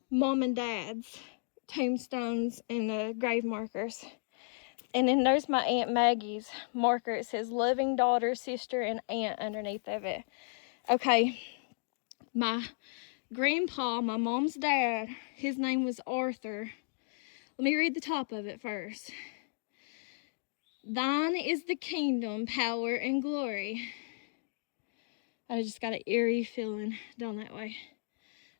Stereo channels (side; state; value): right; silent; digital silence